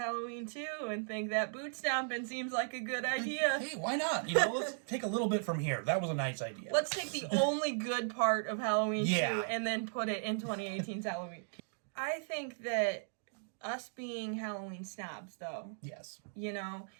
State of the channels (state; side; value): silent; left; digital silence